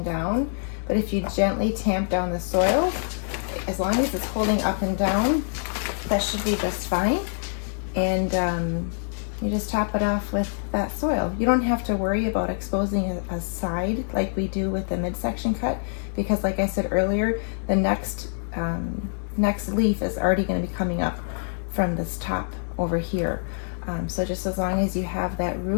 down. But if you gently tamp down the soil, as long as it's holding up and down, that should be just fine. And you just top it off with that soil. You don't have to worry about exposing a side like we do with the midsection cut, because like I said earlier, the next leaf is already going to be coming up from this top over here. So just as long as you have that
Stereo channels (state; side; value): silent; right; 61 dB below the other